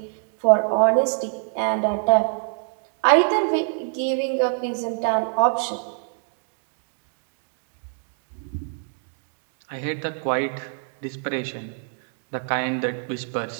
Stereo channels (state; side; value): silent; left; 57 dB below the other